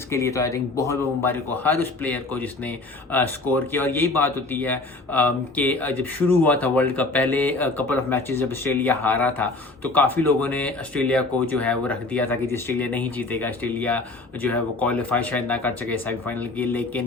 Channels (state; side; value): quieter; right; 3.2 dB